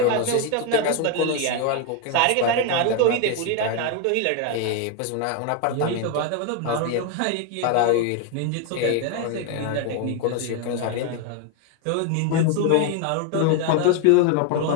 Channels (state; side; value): different; both; correlation 0.01